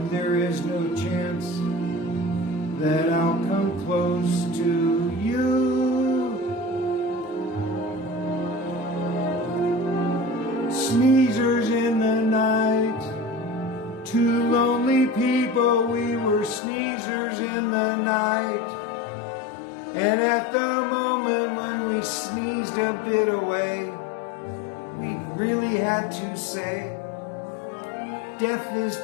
there is no chance that I'll come close to you. Sneezers in the night, two lonely people, we were sneezers in the night. And at the moment when we sneezed a bit away, we really had to say, death is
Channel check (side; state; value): right; drops out; at 16.6 s